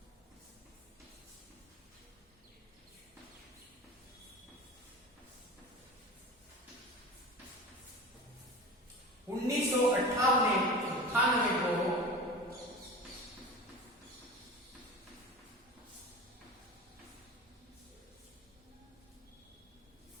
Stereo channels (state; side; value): normal; both; correlation 0.34